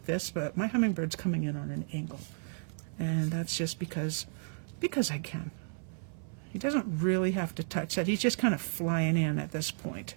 this, but my hummingbird's coming in on an angle. And that's just because I can. He doesn't really have to touch that. He's just kind of flying in at this point.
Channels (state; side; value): silent; left; 56 dB below the other